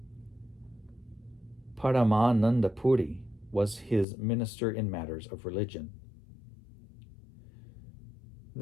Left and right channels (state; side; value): drops out; right; at 4.0 s